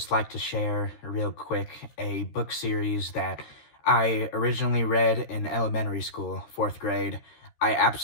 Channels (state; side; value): late; right; 13 ms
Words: like to share real quick a book series that I originally read in elementary school, fourth grade. I